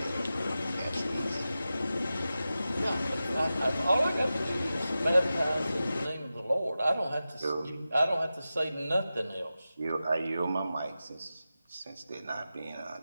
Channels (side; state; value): both; inverted; correlation -0.93